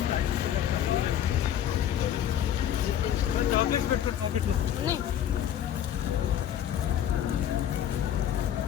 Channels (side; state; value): right; quieter; 10.4 dB